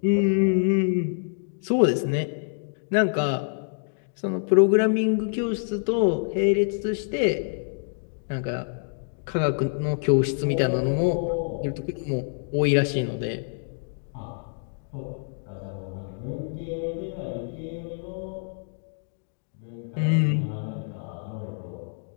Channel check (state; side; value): silent; right; 61 dB below the other